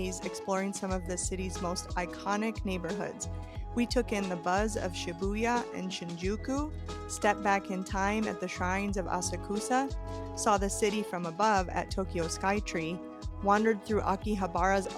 exploring some of the city's most iconic neighborhoods. We took in the buzz of Shibuya and Shinjuku, stepped back in time at the shrines of Asakusa, saw the city from above at Tokyo Skytree, wandered through Akihabara's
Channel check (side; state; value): both; identical; correlation 1.00